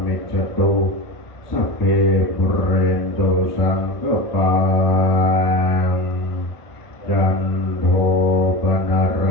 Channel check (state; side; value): late; right; 1.3 ms